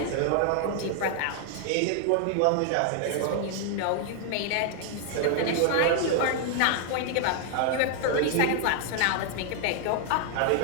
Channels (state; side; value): different; both; correlation 0.00